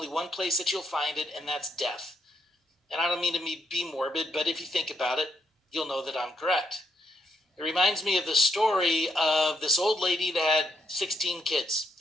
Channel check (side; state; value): both; normal; correlation 0.76